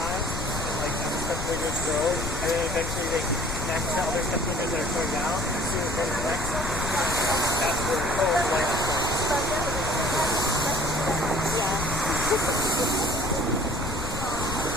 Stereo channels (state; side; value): noise; left; rumble, 5 dB below the sound